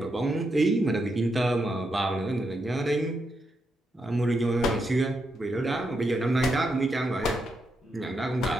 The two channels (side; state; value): both; normal; correlation 0.82